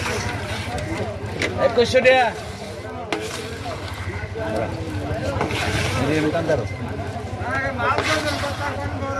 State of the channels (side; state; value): both; identical; correlation 1.00